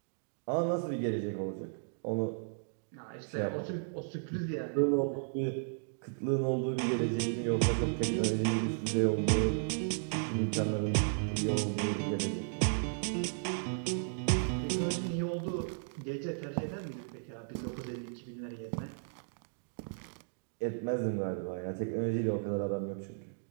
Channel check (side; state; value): left; silent; digital silence